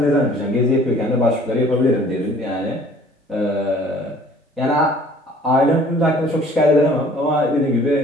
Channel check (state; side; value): normal; both; correlation 0.54